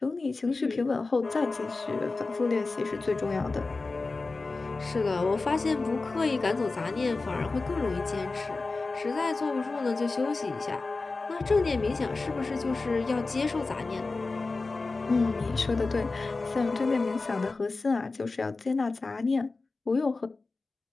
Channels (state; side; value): quieter; right; 3.7 dB